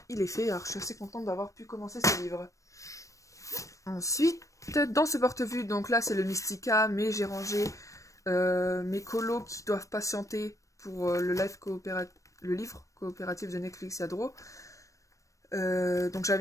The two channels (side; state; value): right; late; 0.16 ms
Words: il est fait. Alors, je suis assez contente d'avoir pu commencer ce livre. Ensuite, dans ce porte-vue, donc là, c'est le Mystica, mais j'ai rangé mes colos qui doivent patienter pour le livre coopératif de Netflix Yadro. Donc